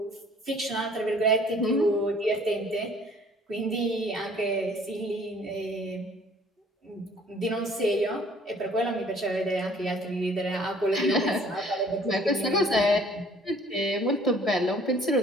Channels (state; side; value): normal; both; correlation 0.56